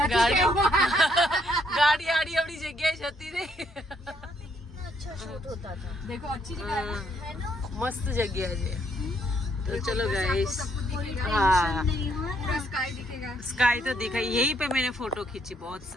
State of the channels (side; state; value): both; normal; correlation 0.71